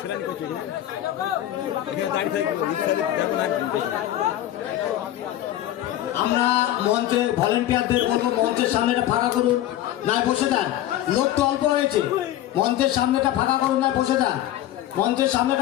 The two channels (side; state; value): right; quieter; 13.3 dB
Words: সেলানি করছি আমরা মঞ্চে ভলেন্টিয়ারদের বলবো মঞ্চের সামনেটা ফাঁকা করুন, নাই বসে যান। লোক তো অল্প হয়েছে, মঞ্চের সামনেটা ফাঁকা করুন, নাই বসে যান। মঞ্চের